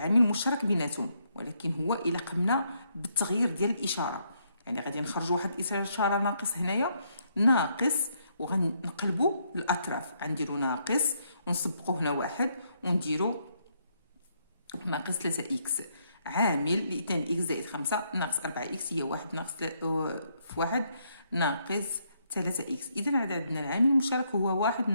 بيناتهم ولكن هو إلا قمنا بالتغيير ديال الإشارة يعني غادي نخرجوا واحد الإشارة ناقص هنايا ناقص وغنقلبوا الأطراف غنديروا ناقص ونسبقوا هنا واحد ونديروا ناقص 3x عامل ل 2x زائد 5 ناقص 4x هي 1 ناقص في 1 ناقص 3x. إذا عندنا العامل المشترك هو 1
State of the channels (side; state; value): both; inverted; correlation -0.74